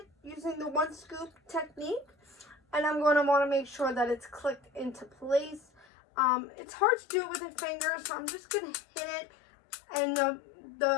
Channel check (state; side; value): drops out; right; at 5.9 s